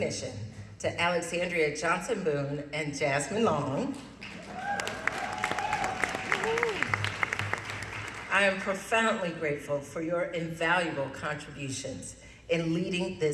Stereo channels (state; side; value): identical; both; correlation 1.00